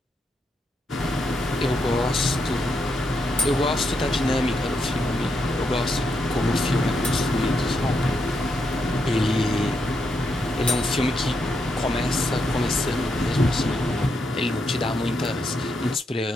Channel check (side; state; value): both; normal; correlation 0.81